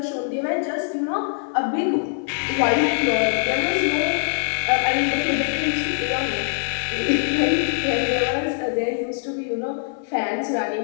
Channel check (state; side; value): silent; right; digital silence